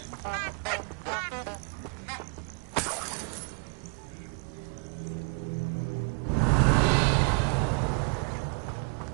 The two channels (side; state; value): left; quieter; 35.8 dB